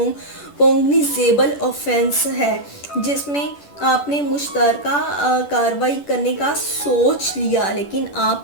ऑफेंस है, जिसमें आपने मुश्तरका कार्रवाई करने का सोच लिया लेकिन आप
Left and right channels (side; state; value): right; late; 10 ms